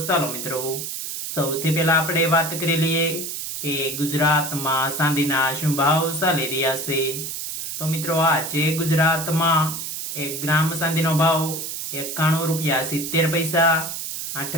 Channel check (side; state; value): right; noise; hiss, 5 dB below the sound